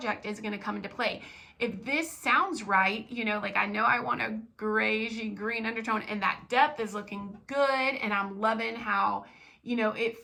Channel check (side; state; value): both; identical; correlation 1.00